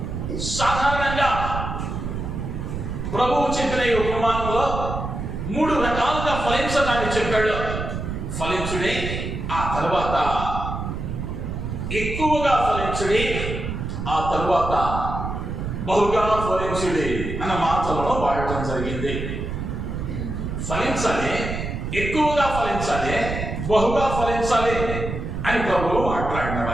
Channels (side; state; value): right; noise; rumble, 5 dB below the sound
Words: సాధారణంగా ప్రభువు చెప్పిన ఈ ఉపమానంలో 3 రకాలుగా ఫలించటాన్ని చెప్పాడు. ఫలించుడి, ఆ తర్వాత ఎక్కువగా ఫలించుడి, ఆ తర్వాత బహుగా ఫలించుడి అన్న మాటలను వాడటం జరిగింది. ఫలించాలి, ఎక్కువగా ఫలించాలి, బహుగా ఫలించాలి అని ప్రభువు మాట్లాడిన